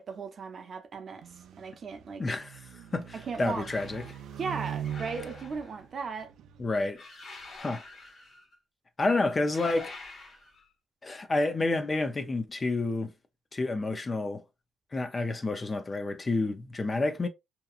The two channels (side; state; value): both; normal; correlation 0.89